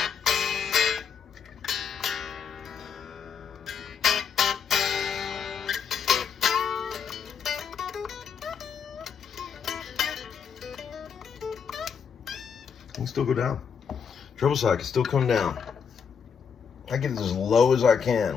I can still go down. Treble side can still come down. I get it as low as I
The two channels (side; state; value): right; quieter; 6.8 dB